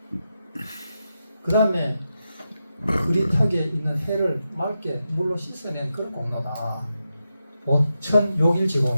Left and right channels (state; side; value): inverted; both; correlation -0.88